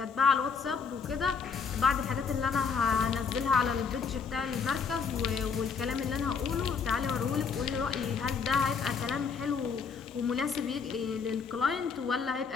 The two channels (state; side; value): quieter; right; 5.8 dB